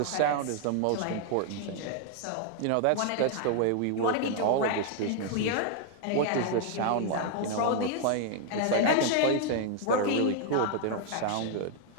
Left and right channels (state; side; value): different; both; correlation 0.00